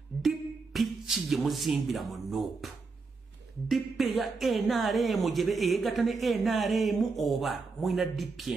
DP ki gye muzimbira mu NUP? DP ya NRM gye eyegatta ne NRM oba mwina DP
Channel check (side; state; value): left; quieter; 4.3 dB